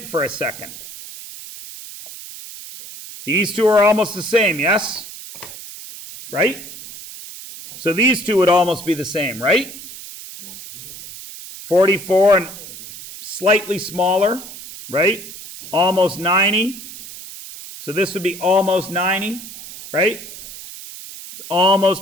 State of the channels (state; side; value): noise; right; hiss, 14 dB below the sound